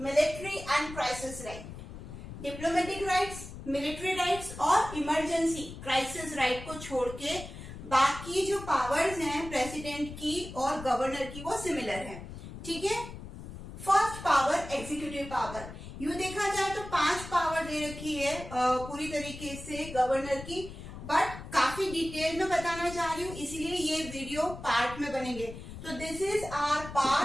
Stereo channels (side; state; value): left; noise; rumble, 12 dB below the sound